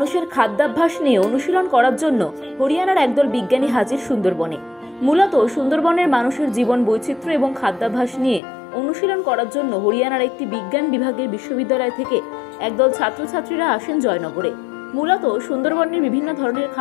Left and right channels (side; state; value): right; drops out; at 8.4 s